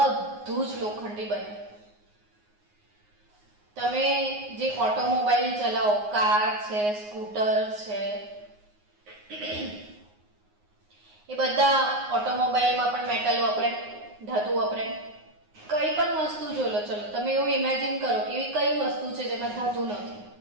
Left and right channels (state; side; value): late; left; 9.6 ms